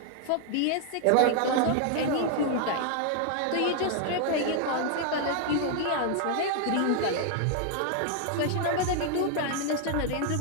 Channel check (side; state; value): both; different; correlation 0.00